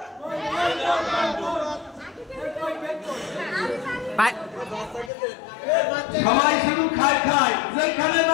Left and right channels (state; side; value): drops out; right; at 5.1 s